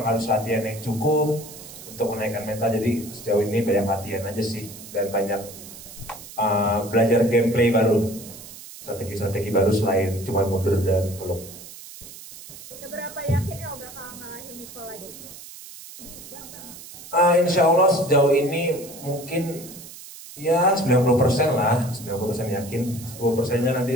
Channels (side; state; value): right; noise; hiss, 15 dB below the sound